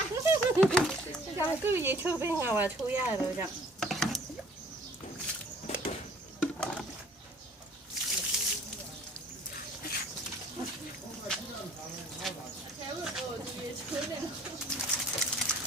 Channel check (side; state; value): both; normal; correlation 0.54